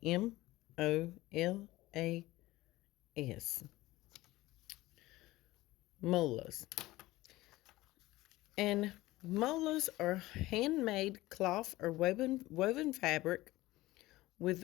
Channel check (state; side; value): quieter; right; 18.1 dB